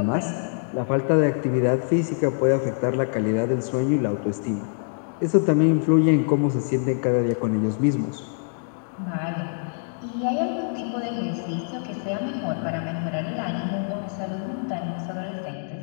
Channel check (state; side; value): silent; right; digital silence